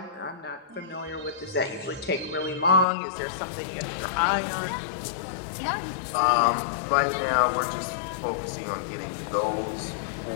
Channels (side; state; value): right; drops out; at 2.9 s